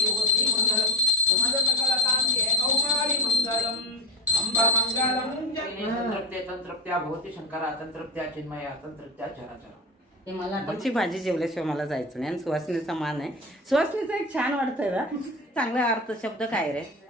तंत्रप्त्या भवती शंकरा तंत्रप्त्या चिन्मया तंत्रप्त्या चराचरा. मला आमची भाजी जेवल्याशिवाय मला जायचं नाही. आणि सुवासिनीचा मान आहे. सुवासिनीचं एक छान वाटतंय ना, चांगला अर्थ शब्द काय रे,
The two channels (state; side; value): normal; both; correlation 0.21